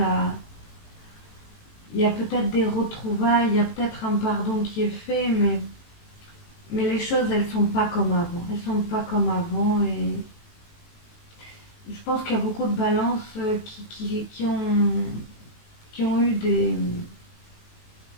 à... Il y a peut-être des retrouvailles, il y a peut-être un pardon qui est fait, mais les choses, elles sont pas comme avant. Elles sont pas comme avant et je pense qu'il y a beaucoup de balances qui ont eu des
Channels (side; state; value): right; late; 18 ms